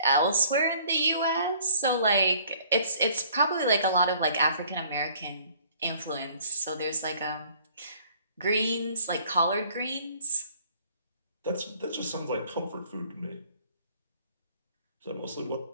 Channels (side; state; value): both; inverted; correlation -0.57